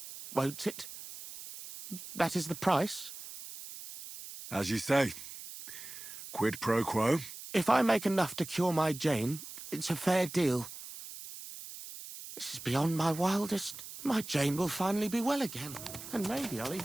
won't it? That is the price? As you say. Quid pro quo? If I make enough to cure my Jane, it's a fair deal. This is beyond my wildest. My Jane will finally be well again. And maybe I'll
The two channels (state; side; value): noise; right; hiss, 12 dB below the sound